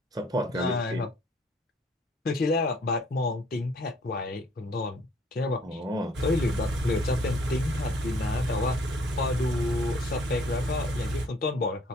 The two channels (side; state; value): both; normal; correlation 0.60